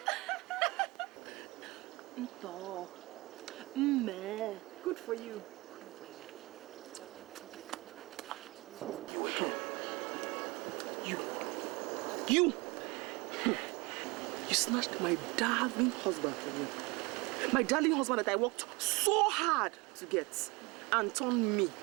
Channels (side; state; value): left; quieter; 24.0 dB